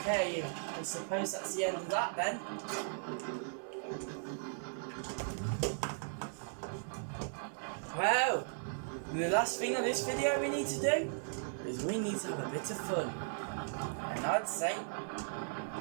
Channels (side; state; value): left; silent; 53 dB below the other